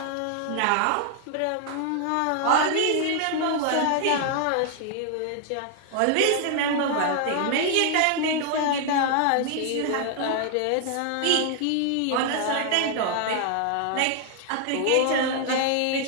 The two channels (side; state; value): both; different; correlation 0.00